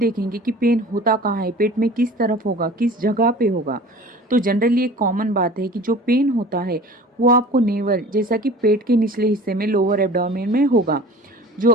कि पेन होता कहाँ है, पेट में किस तरफ होगा, किस जगह पे होगा। तो जनरली एक कॉमन बात है कि जो पेन होता है वो आपको नेवल, जैसा कि पेट के निचले हिस्से में, लोअर एब्डोमेन में होगा। जो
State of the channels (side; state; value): both; normal; correlation 0.42